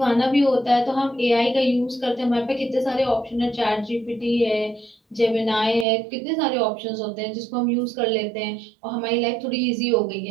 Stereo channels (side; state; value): left; drops out; at 5.9 s